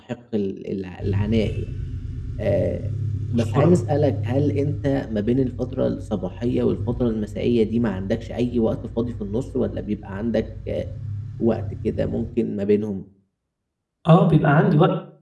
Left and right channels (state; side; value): identical; both; correlation 1.00